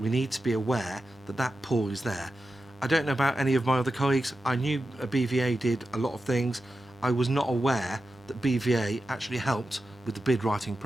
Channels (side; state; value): both; normal; correlation 0.91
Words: we need to be aware that that pool is there. I don't know about any of my other colleagues. I knew BVA did a lot of things. I was not aware that BVA actually helped with the bid writing